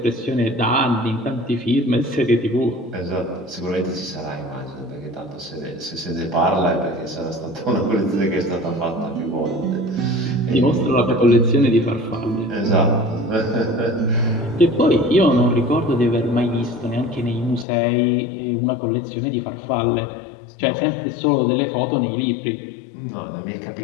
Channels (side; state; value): right; drops out; at 17.7 s